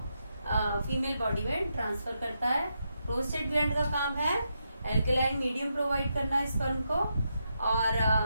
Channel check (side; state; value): both; inverted; correlation -0.83